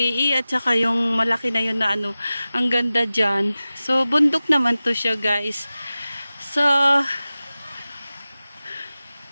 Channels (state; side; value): inverted; both; correlation -0.96